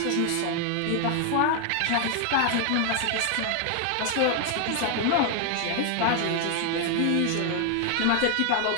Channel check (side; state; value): both; different; correlation 0.00